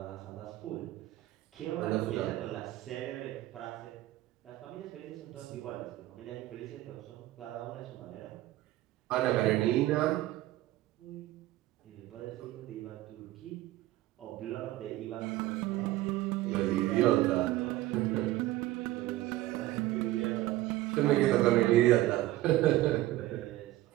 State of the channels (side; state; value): left; quieter; 16.2 dB